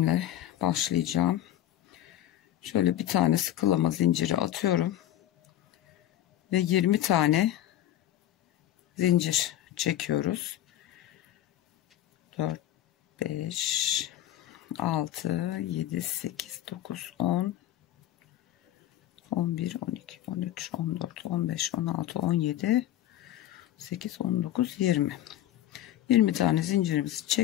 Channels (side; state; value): right; quieter; 12.7 dB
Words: başlayacağım. Şöyle bir tane sıkılama zinciri atıyorum ve 20 tane zincir çekiyoruz. 4 5 6 7 8 9 10 11 12 13 14 15 16 17 8 19 20 tane zincirimizi